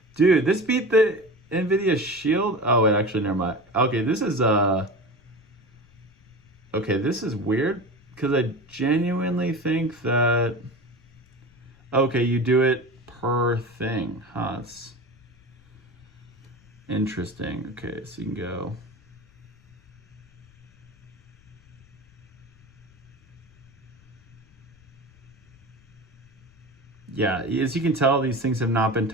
Dude, this beat the NVIDIA Shield. Oh, wait, actually, never mind. Okay, this is okay, this is weird because I genuinely think that okay, you do it per thing. Huh, it's interesting. Okay, so you can go. Yeah, as you can tell, these things have not been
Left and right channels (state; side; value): noise; left; rumble, 28 dB below the sound